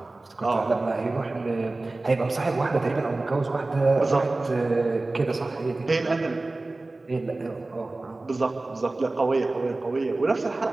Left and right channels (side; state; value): left; quieter; 3.1 dB